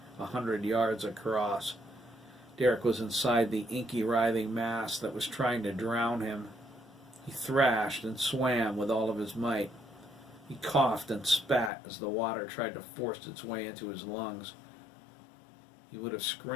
100 yards across. Derek was inside the inky, writhing mass that was trying to drown him. He thrashed and swam with all of his might. He coughed and spat as the water tried to force its way into his lungs. He would have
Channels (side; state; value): right; drops out; at 11.7 s